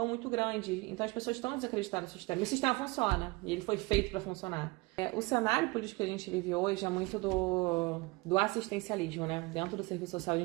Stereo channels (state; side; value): quieter; left; 24.4 dB